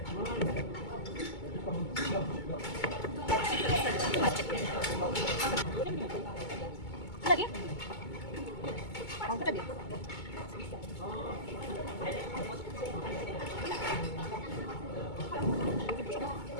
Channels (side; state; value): right; late; 2.2 ms